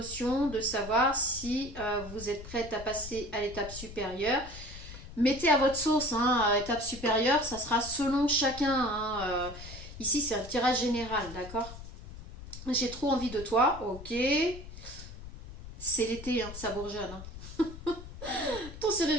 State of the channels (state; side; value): noise; left; rumble, 13 dB below the sound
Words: de savoir si vous êtes prête à passer à l'étape supérieure. Mettez à votre sauce, hein, étape supérieure, ça sera selon chacun. Hein, ici, c'est un tirage général, d'accord? J'ai trop envie de toi, ok. C'est l'été, hein, ça bourgeonne. Hein. Ton serrure